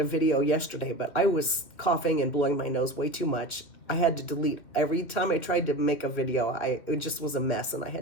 video yesterday, but I was coughing and blowing my nose way too much. I had to delete every time I tried to make a video. It just was a mess, and I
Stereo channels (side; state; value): right; late; 2.6 ms